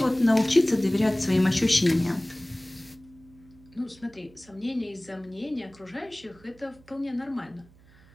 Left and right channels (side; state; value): right; noise; hum, 26 dB below the sound